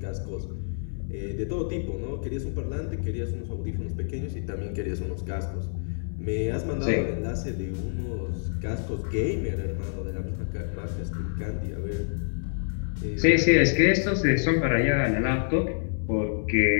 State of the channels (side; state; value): right; silent; 60 dB below the other